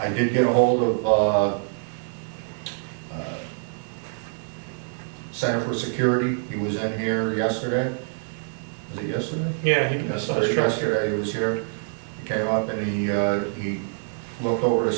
did get a hold of Center for Security. He was in here yesterday. Was it yesterday? Yeah, Yesterday he was here. He came up and he looked over the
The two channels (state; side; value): silent; left; 62 dB below the other